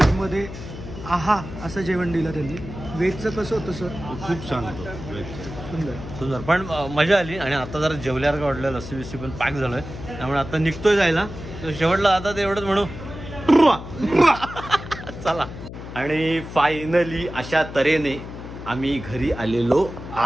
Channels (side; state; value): left; noise; hum, 11 dB below the sound